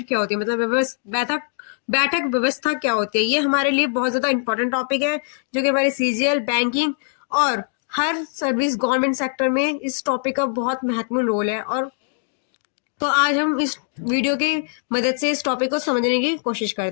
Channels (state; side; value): silent; right; digital silence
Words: क्या होती है, मतलब बैठक व्यवस्था क्या होती है। ये हमारे लिए बहुत ज़्यादा इंपॉर्टेंट टॉपिक है जो कि हमारे सीजीएल, बैंकिंग और हर सर्विस गवर्नमेंट सेक्टर में इस टॉपिक का बहुत महत्वपूर्ण रोल है। और तो आज हम इस वीडियो की मदद से इस टॉपिक को समझने की कोशिश